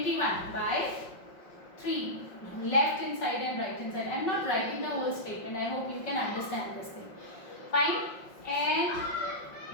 By 3. Left hand side and right hand side. I am not writing the whole statement. I hope you can understand this thing. Fine. And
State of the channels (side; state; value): right; late; 5.5 ms